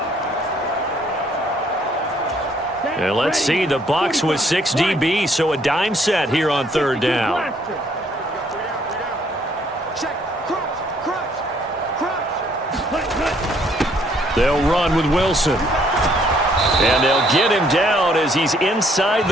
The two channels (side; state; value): both; normal; correlation 0.65